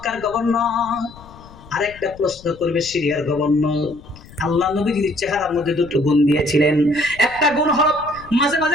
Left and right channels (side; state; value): left; noise; rumble, 20 dB below the sound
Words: গভর্নর, আর একটা প্রশ্ন করবে সিরিয়ার গভর্নর। আল্লাহ নবীজির চেহারার মধ্যে দুটো গুণ দিয়েছিলেন। একটা গুণ হলো মাঝে